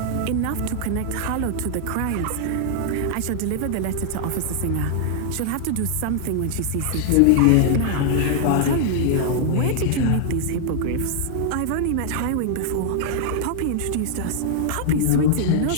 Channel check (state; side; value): different; both; correlation -0.01